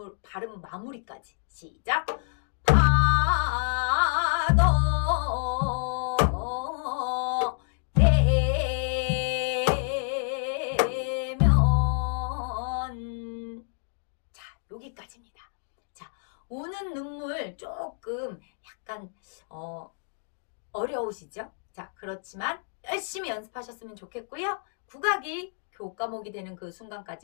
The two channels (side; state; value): right; silent; digital silence